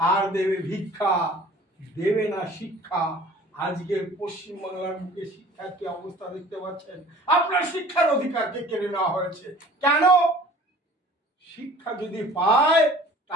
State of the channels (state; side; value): normal; both; correlation 0.48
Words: দেবে ভিক্ষা, দেবে না শিক্ষা। আজকে পশ্চিমবাংলার বুকে শিক্ষার কি অবস্থা দেখতে পাচ্ছেন। আপনার শিক্ষার অধিকারকে কেড়ে নেওয়া হয়েছে। কেন? শিক্ষা যদি পায়